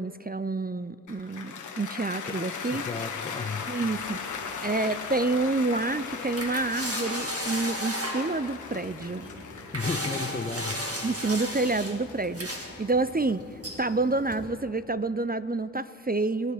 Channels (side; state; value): both; normal; correlation 0.37